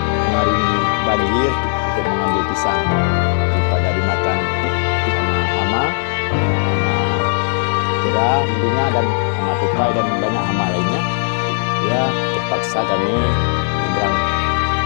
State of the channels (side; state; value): right; silent; digital silence